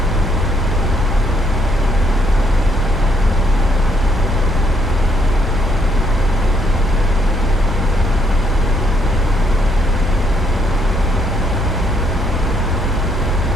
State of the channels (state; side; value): noise; left; rumble, 10 dB below the sound